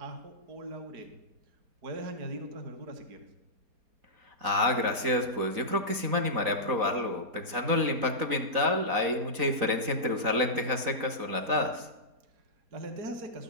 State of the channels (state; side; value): late; left; 4.0 ms